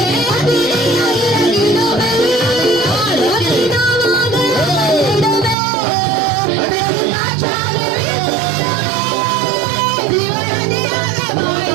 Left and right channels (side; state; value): left; drops out; at 5.6 s